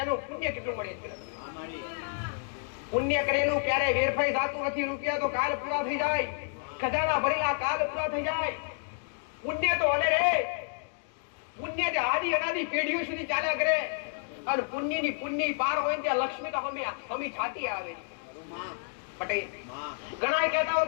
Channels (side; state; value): right; silent; digital silence